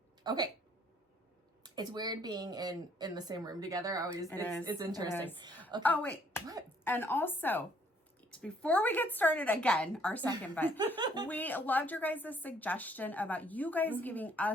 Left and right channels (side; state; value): both; normal; correlation 0.65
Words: Okay. It's weird being in the same room together. It's interesting. It is. Okay. Oh, wait. What? And also, before we get started again, our second bet, we loved your guys' suggestion about you guys giving